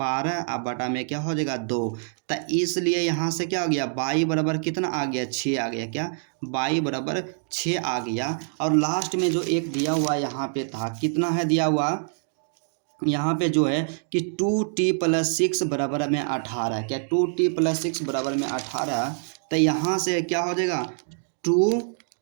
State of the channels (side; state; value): left; silent; 61 dB below the other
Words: अब बटा में क्या हो जाएगा 2, तो इसलिए यहाँ से क्या हो गया y बराबर कितना आ गया 6 आ गया, क्या y बराबर 6 आ गया। और लास्ट में जो एक दिया हुआ यहाँ पे था कितना है दिया हुआ यहाँ पे जो है कि 2t + 6 बराबर में 18, क्या 2t + 6 बराबर में 18, तो यहाँ से क्या हो जाएगा 2t